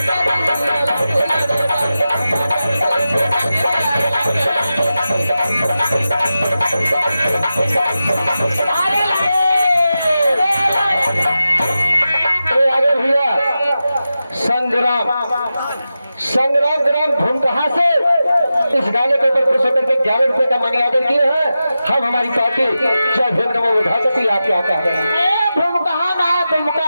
आगे भैया संग्राम संग्राम ग्राम भूमकहा से इस गाने के ऊपर खुश होकर के 11 रुपए का मनी ऑर्डर किए हैं। हम हमारी पार्टी जय भीम नमो बुद्धाय आप क्या कह रहे हैं? भूमकहा ना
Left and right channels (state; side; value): inverted; both; correlation -0.92